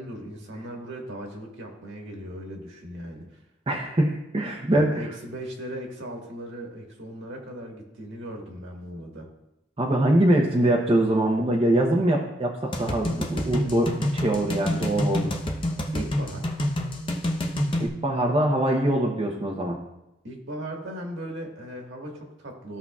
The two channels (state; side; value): normal; both; correlation 0.75